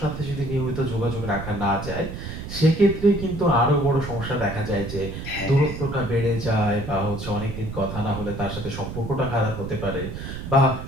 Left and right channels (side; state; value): right; noise; rumble, 8 dB below the sound